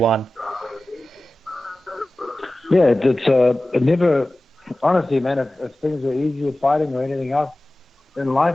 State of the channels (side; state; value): both; normal; correlation 0.96